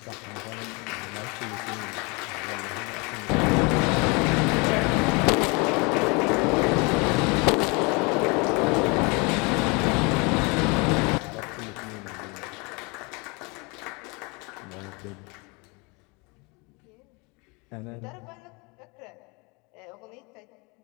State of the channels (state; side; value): quieter; right; 29.1 dB